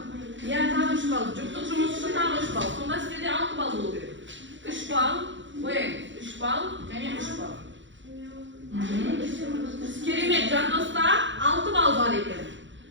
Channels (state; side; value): late; left; 0.54 ms